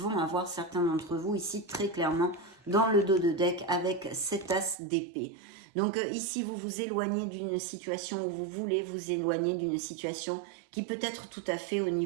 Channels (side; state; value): left; drops out; at 4.8 s